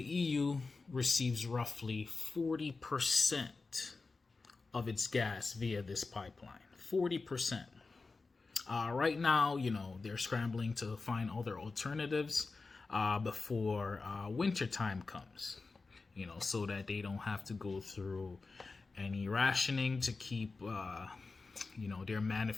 EU receives roughly 40% of its gas via this pipeline. 40%. Right now, they're scrambling to find other alternatives before winter time comes, so that they don't have to go through any rationing to keep, their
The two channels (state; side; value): quieter; right; 4.0 dB